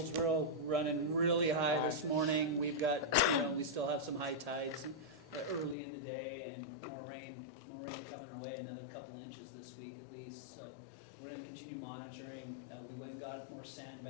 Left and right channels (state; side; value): drops out; right; at 5.8 s